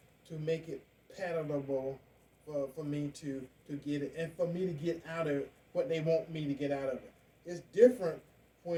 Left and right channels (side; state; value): both; identical; correlation 1.00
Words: to make it palatable for me to get it, and for me to get out of it what they want me to get out of it. It's different